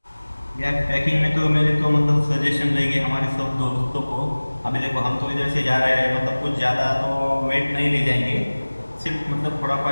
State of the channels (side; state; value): both; inverted; correlation -1.00